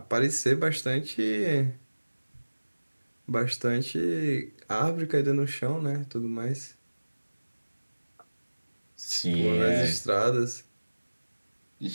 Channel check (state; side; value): inverted; both; correlation -1.00